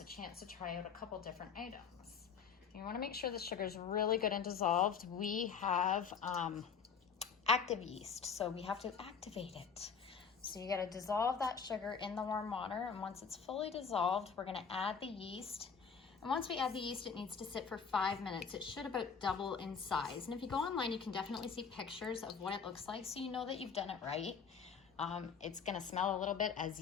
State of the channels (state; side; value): quieter; right; 6.3 dB